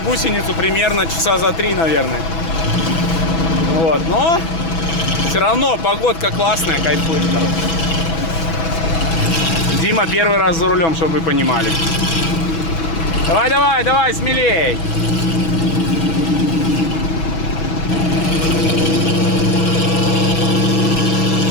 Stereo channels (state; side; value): late; right; 6.0 ms